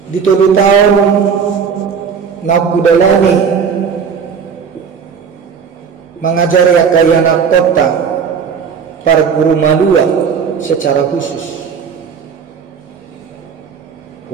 Di 7 tahun nakudalani mengajari akayana kota para guru malua secara khusus.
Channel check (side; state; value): left; quieter; 6.6 dB